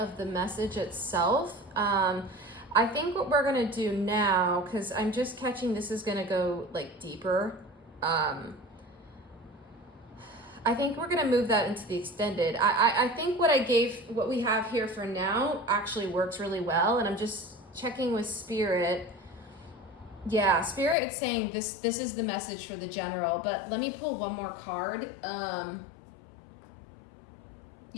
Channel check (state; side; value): drops out; right; at 21.0 s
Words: the message itself. I think what we're gonna do now, because I'm just catching this is gonna go like deeper. I think we're gonna move that into the extended. I think what we have here for now actually works really well, and I'm just checking with Spirit. Yeah, Spirit is saying this is the message for the general, but let me pull one more card.